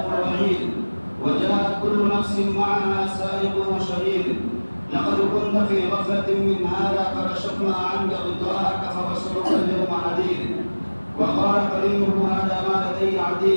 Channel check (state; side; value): inverted; both; correlation -1.00